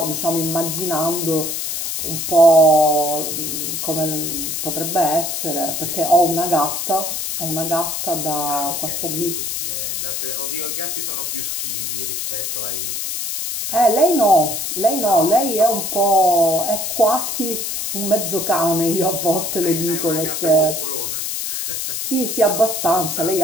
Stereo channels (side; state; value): left; noise; hiss, 3 dB below the sound